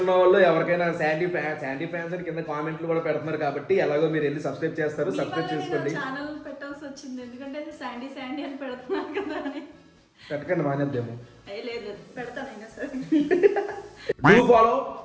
వాళ్ళు ఎవరికైనా శాండీ ఫ్యాన్స్ అని కింద కామెంట్లు కూడా పెడుతున్నారు కాబట్టి ఎలాగో మీరు వెళ్ళి సబ్స్క్రైబ్ చేస్తారు, సబ్స్క్రైబ్ చేసుకోండి. ఛానల్ పెట్టాల్సి వచ్చింది ఎందుకంటే శాండీ అని పెడుతున్నారు కదా అని. పెట్టకండి, మానేద్దాము. లేదు, పెడతానైనా సరే. డూ ఫాలో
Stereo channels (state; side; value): identical; both; correlation 1.00